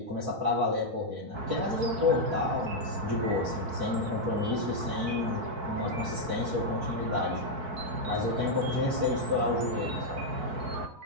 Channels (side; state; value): left; late; 4.6 ms